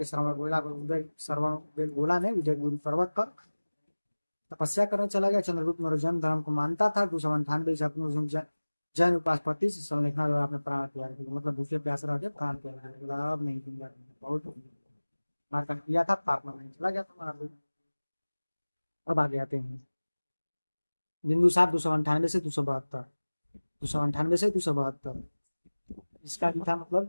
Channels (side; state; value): both; inverted; correlation -1.00